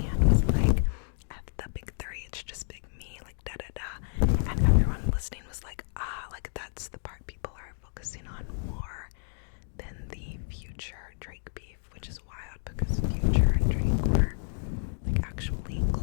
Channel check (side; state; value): right; silent; digital silence